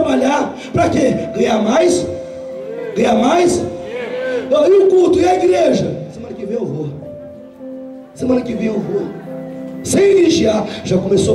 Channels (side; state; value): both; identical; correlation 1.00